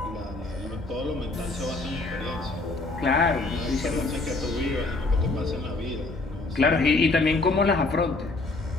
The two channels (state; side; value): quieter; right; 3.2 dB